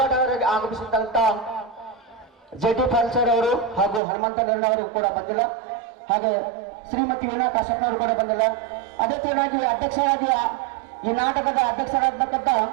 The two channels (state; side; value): drops out; left; at 4.0 s